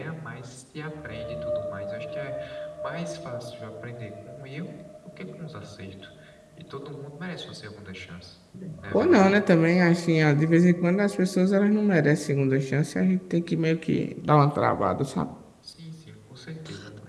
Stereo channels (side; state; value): both; identical; correlation 1.00